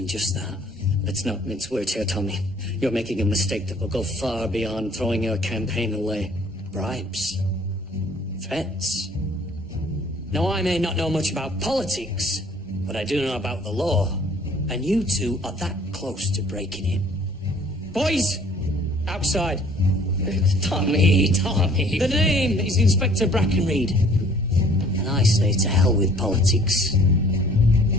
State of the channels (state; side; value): normal; both; correlation 0.56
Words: just that. Let's not mince words here, Tommy. You're making a mistake that will go far beyond throwing your campaign away. Bribes. Threats. Now, I may not know much about politics, but I do know about the law. And you two are that close to breaking it. Boys! Outside. Tommy. The name is Inspector Brackenreed. And I say to hell with politics.